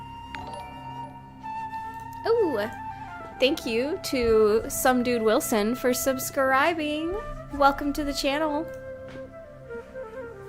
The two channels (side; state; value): both; identical; correlation 1.00